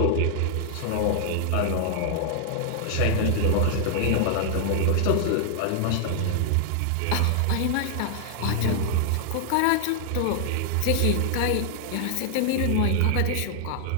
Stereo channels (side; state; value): both; different; correlation 0.00